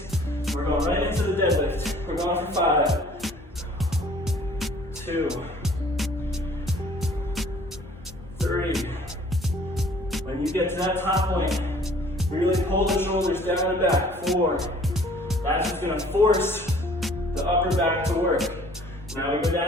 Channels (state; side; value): normal; both; correlation 0.54